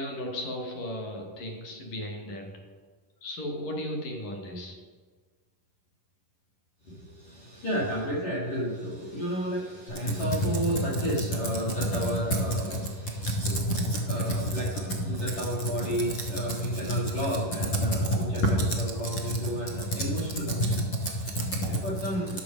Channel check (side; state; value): right; late; 11 ms